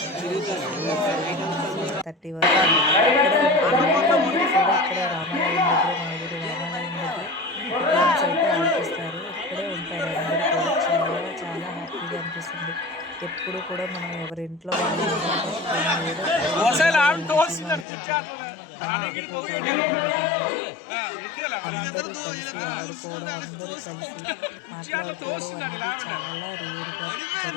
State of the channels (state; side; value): drops out; right; at 17.9 s